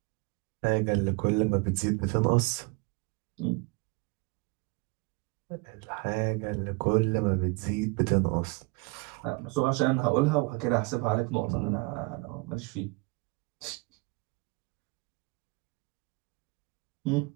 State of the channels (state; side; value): quieter; left; 27.0 dB